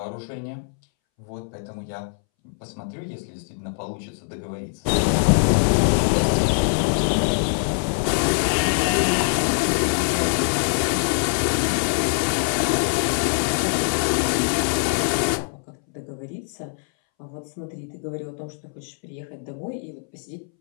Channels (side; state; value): right; silent; 63 dB below the other